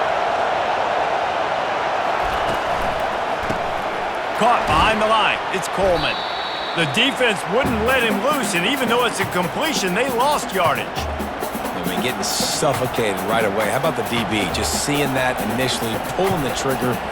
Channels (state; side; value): identical; both; correlation 1.00